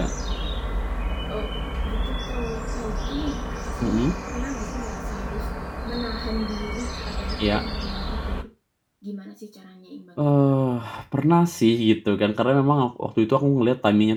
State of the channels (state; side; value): identical; both; correlation 1.00